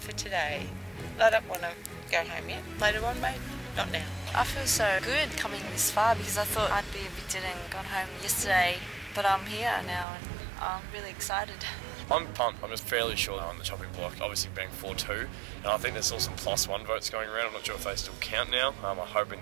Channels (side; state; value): left; drops out; at 10.1 s